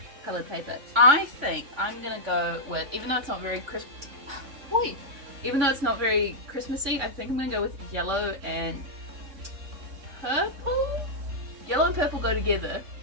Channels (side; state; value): left; late; 3.5 ms